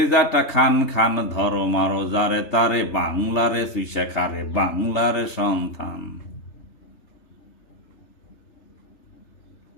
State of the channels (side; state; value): right; late; 3.4 ms